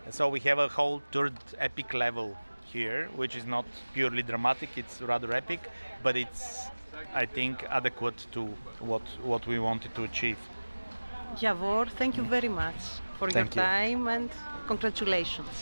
So we have a whole third epic level here, which is not purely dramatic, it's rather epic, but it's, I think, adequate to what we wanted to achieve. Javor, thank you very much for your time and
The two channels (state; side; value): inverted; both; correlation -1.00